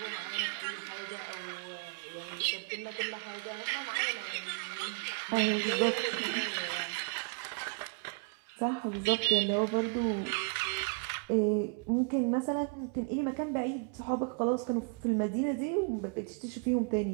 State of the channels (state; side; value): quieter; left; 36.2 dB